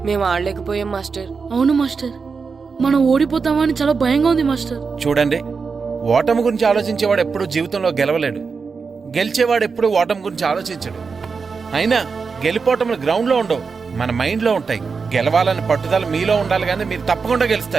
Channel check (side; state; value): left; quieter; 5.1 dB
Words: మేము ఆడలేకపోయాం మాస్టర్. అవును మాస్టర్, మనం ఓడిపోతామని చాలా భయంగా ఉంది మాస్టర్. చూడండి, ఓటమి గురించి ఆలోచించేవాడు ఎప్పుడు జీవితంలో గెలవలేడు. గెలిచేవాడు ఎప్పుడు ఓటమి గురించి ఆలోచించడు. అయినా గెలిపోవటములు గ్రౌండ్లో ఉండవు, మన మైండ్లో ఉంటాయి. గెలవాలని పట్టుదల మీలో ఉండాలి, కానీ మీరు తప్పకుండా